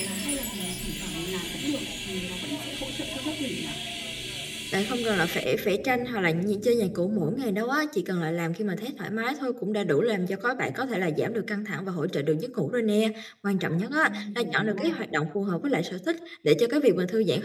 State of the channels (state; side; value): identical; both; correlation 1.00